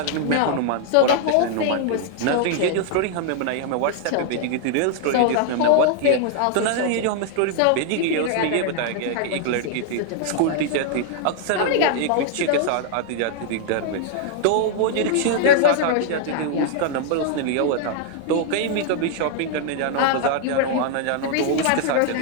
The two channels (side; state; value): both; different; correlation 0.00